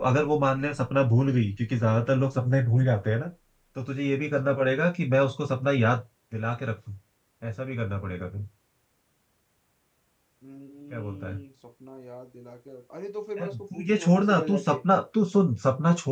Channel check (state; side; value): identical; both; correlation 1.00